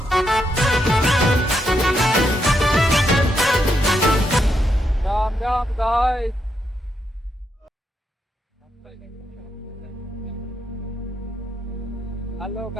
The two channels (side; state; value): both; normal; correlation 0.80